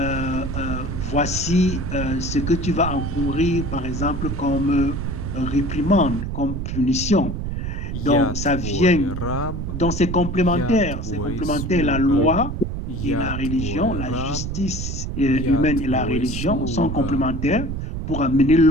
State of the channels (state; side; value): noise; right; rumble, 4 dB below the sound